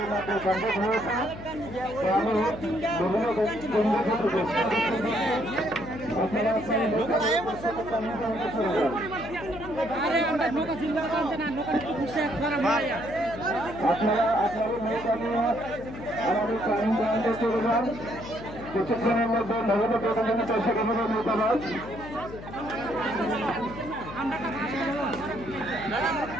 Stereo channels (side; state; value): left; noise; hum, 13 dB below the sound